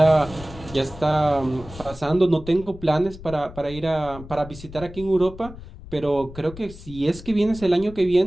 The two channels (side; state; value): left; noise; rumble, 15 dB below the sound